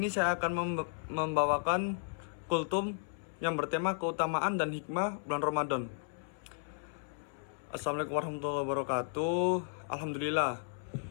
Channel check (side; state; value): right; silent; 55 dB below the other